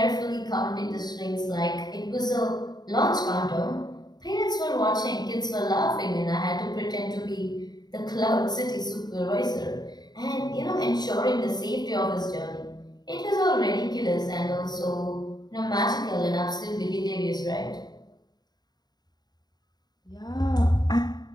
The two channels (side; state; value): right; late; 0.20 ms